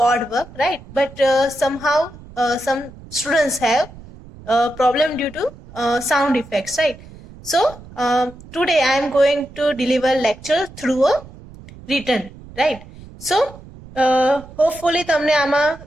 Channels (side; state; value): right; noise; rumble, 19 dB below the sound